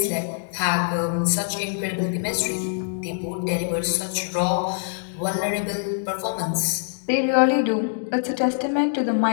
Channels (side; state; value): right; silent; digital silence